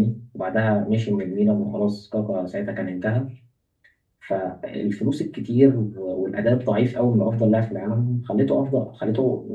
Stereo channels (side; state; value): both; identical; correlation 1.00